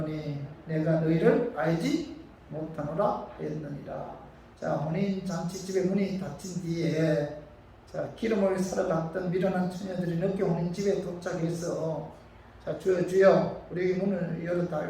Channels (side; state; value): both; identical; correlation 1.00